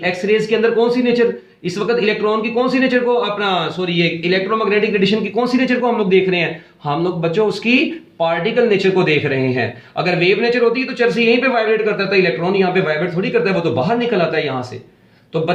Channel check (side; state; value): both; identical; correlation 1.00